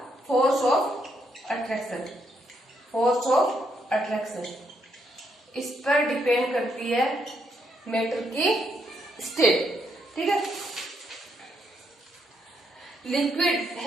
force of attraction. Force of attraction, इस पर डिपेंड करती है मैटर की स्टेट। ठीक है, liquid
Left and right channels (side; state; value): both; normal; correlation 0.76